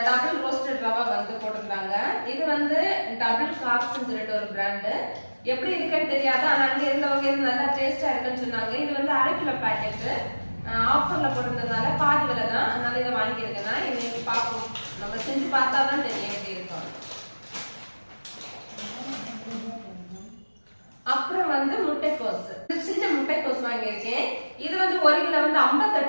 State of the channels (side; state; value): both; inverted; correlation -1.00